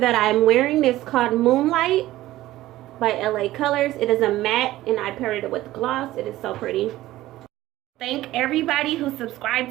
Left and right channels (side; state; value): left; quieter; 15.9 dB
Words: I'm wearing is called Moonlight by LA Colors. It is a matte and I paired it with gloss. It is so pretty. Thank everybody who